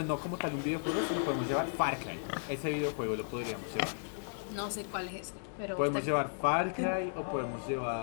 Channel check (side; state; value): right; silent; digital silence